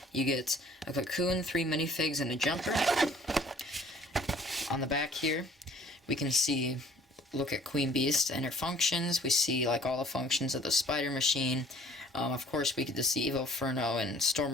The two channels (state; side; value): normal; both; correlation 0.54